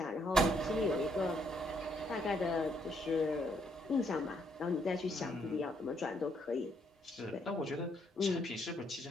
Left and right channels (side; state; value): both; normal; correlation 0.72